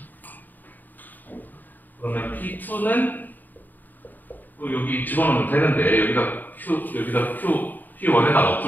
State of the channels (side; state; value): right; late; 0.087 ms